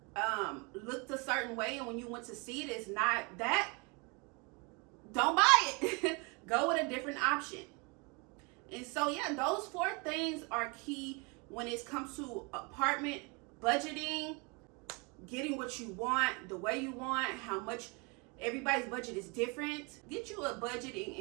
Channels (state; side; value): quieter; left; 30.3 dB